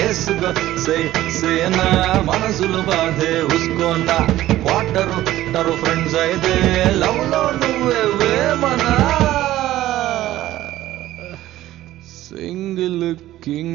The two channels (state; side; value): quieter; left; 14.7 dB